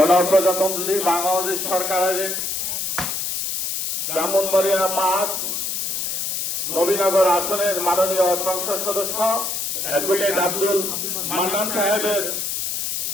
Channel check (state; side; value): noise; left; hiss, 2 dB below the sound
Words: বাংলাদেশ সরকারের ব্রাহ্মণবাড়িয়া ৫ নবীনগর আসনের মাননীয় সংসদ সদস্য অ্যাডভোকেট আব্দুল মান্নান সাহেবের